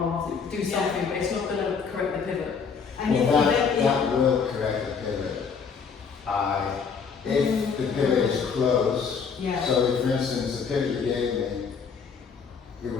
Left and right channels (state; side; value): quieter; right; 5.9 dB